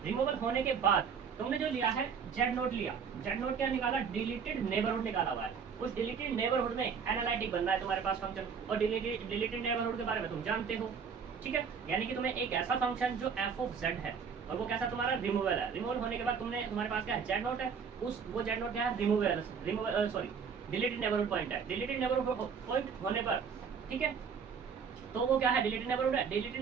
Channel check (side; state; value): left; quieter; 6.4 dB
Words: रिमूवल होने के बाद तुमने जो लिया है जेड नोड लिया, जेड नोड क्या निकाला? डिलीटेड नेबरहुड निकाला हुआ है। उस डिलीटेड नेबरहुड में एनालिटिक बन रहा है तुम्हारे पास फंक्शन, और डिलीटेड नेबरहुड के बारे में तुम जानते हो। ठीक है, यानी कि तुम्हें एक ऐसा फंक्शन जो एफ ऑफ जेड है और वो कैसा तुम्हारा? रिमूवल है। रिमूवल होने के बाद तुम्हारे पास क्या है? जेड नोट है, उस वो जेड नोट क्या है? Removal sorry deleted neighbourhood point है। डिलीटेड नेबरहुड पॉइंट होने पर, ठीक है, तो वो क्या है? डिलीटेड नेबरहुड है। डिलीटेड